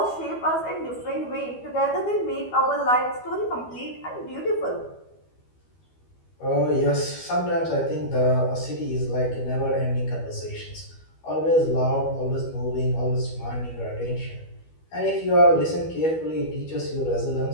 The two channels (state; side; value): late; right; 12 ms